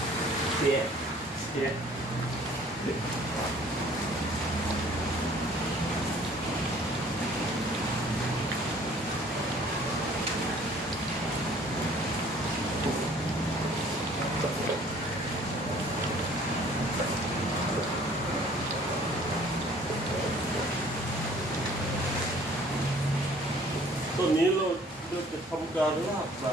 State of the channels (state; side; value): normal; both; correlation 0.54